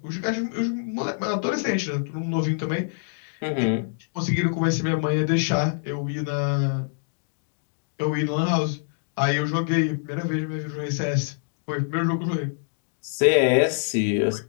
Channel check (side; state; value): right; silent; digital silence